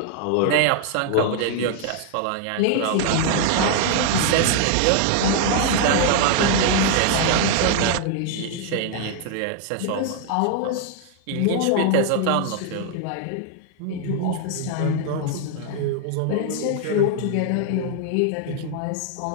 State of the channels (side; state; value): both; different; correlation 0.00